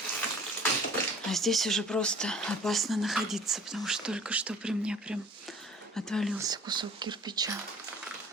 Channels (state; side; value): normal; both; correlation 0.49